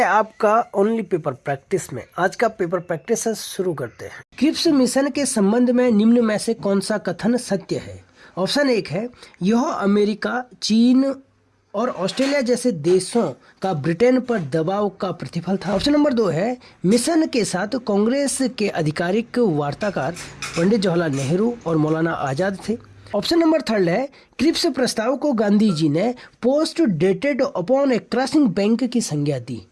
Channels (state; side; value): identical; both; correlation 1.00